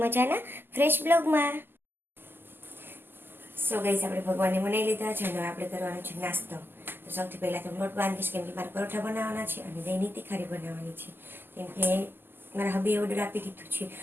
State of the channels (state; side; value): late; left; 0.099 ms